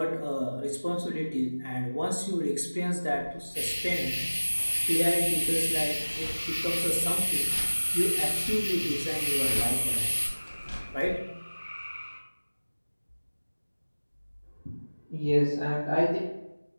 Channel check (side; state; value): both; inverted; correlation -1.00